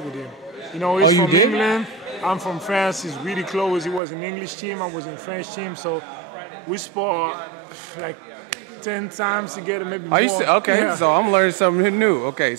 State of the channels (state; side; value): drops out; left; at 4.0 s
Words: with him. He's from England. I'm from France. He's really close. He was an English team. I was in French team. So we spar like 10 times together, maybe more. Okay, yeah. so I'm learning something new. Okay,